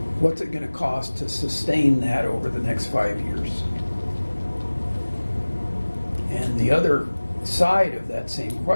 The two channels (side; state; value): both; inverted; correlation -1.00